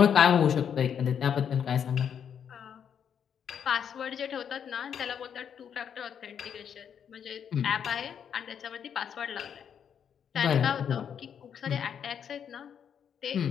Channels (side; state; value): right; quieter; 8.1 dB